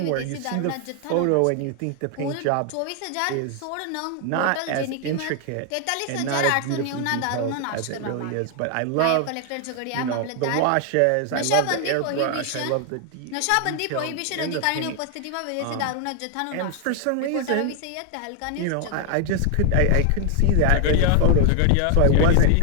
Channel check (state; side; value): different; both; correlation 0.00